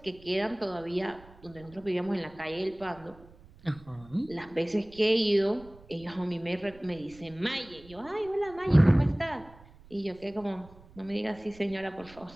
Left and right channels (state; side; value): noise; right; rumble, 23 dB below the sound